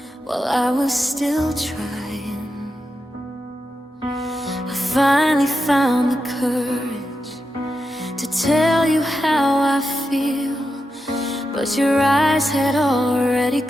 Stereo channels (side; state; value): both; normal; correlation 0.88